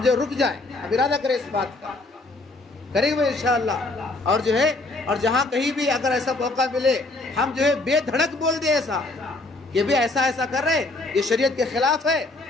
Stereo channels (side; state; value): right; quieter; 3.0 dB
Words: جو رک جائیں، ہم ارادہ کریں اس بات کا، کریں گے انشاءاللہ۔ اور جو ہے، اور جہاں کہیں بھی اگر ایسا موقع ملے، ہم جو ہے بے دھڑک بول دیں ایسا کہ بھی ایسا کر رہے، یہ شریعت کے خلاف ہے،